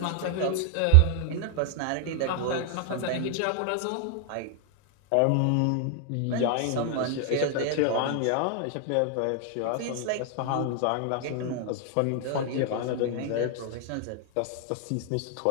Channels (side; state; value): both; different; correlation 0.00